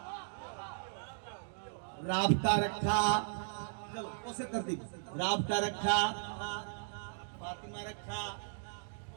राबता रखा चलो उसे तरतीब राबता रखा फातिमा रखा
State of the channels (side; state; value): left; silent; digital silence